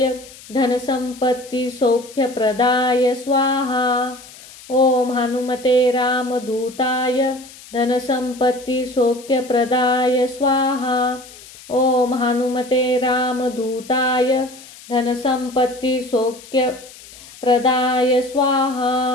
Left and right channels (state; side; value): noise; left; hiss, 19 dB below the sound